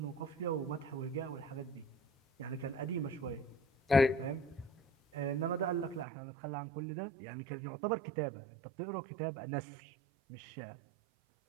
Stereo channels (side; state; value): left; drops out; at 6.1 s